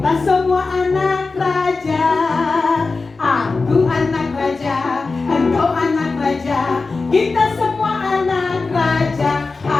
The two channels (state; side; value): quieter; right; 4.0 dB